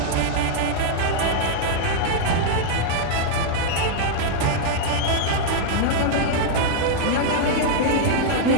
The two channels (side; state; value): both; different; correlation -0.01